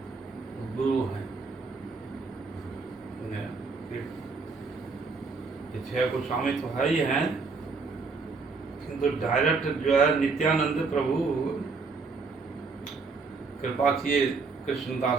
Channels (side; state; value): left; quieter; 4.4 dB